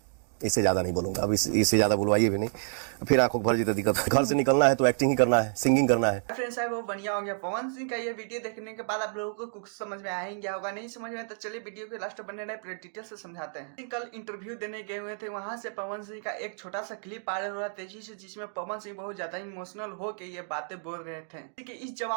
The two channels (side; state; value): left; silent; digital silence